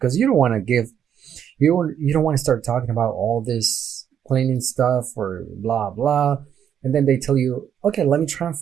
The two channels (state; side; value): quieter; left; 8.9 dB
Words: because you don't want to give, you don't want to start talking about all this cleaning stuff or blah blah, and then they tell you, okay, let me